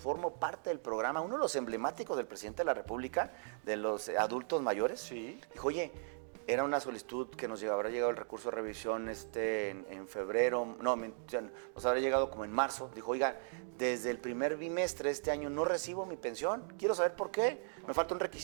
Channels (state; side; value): silent; left; digital silence